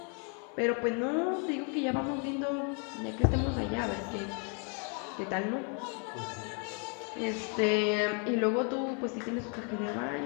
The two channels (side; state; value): right; quieter; 38.7 dB